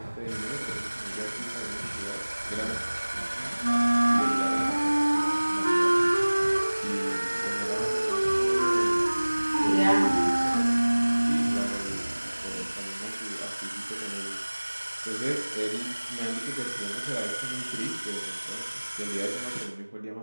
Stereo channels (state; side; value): inverted; both; correlation -1.00